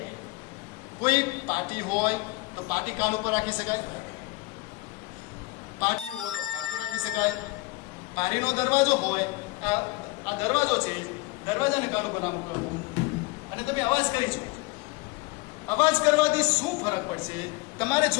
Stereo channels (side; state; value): right; quieter; 22.8 dB